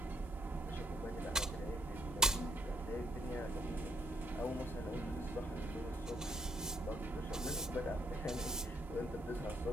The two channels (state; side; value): normal; both; correlation 0.70